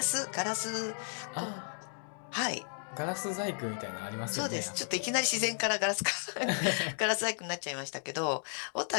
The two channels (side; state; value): right; silent; digital silence